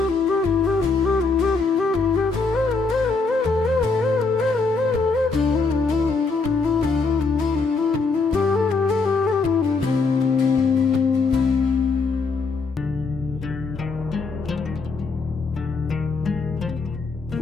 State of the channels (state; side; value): quieter; right; 4.2 dB